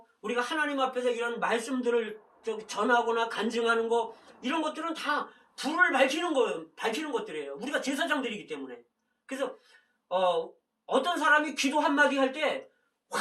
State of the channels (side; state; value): both; identical; correlation 1.00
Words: 우리가 하나님 앞에서 이런 말씀들을 전하거나 간증하는 거, 이런 것들은 다 불을 밝히는 것들이에요. 우리가 제사장들이기 때문에. 그래서 어떤 사람이 기도 한마디 할 때